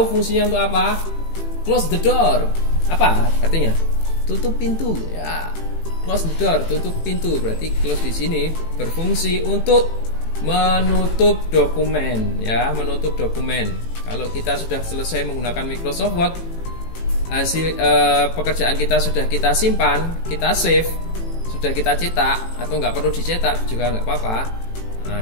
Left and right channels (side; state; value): right; late; 18 ms